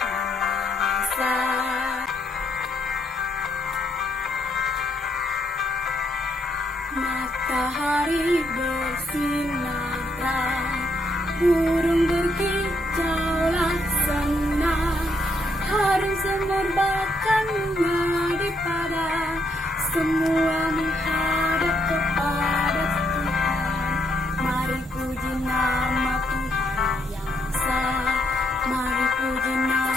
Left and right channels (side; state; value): both; normal; correlation 0.74